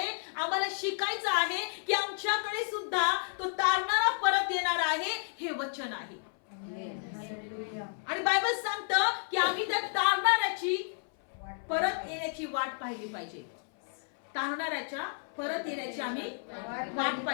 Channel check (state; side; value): silent; right; 57 dB below the other